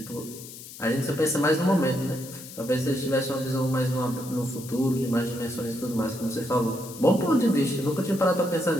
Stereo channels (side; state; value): left; noise; hiss, 14 dB below the sound